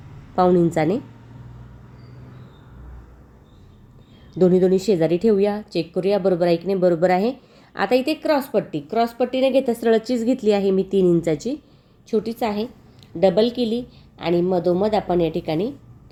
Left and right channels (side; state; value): both; identical; correlation 1.00